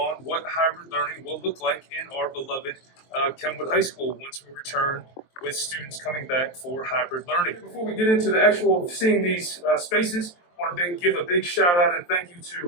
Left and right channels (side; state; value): right; late; 23 ms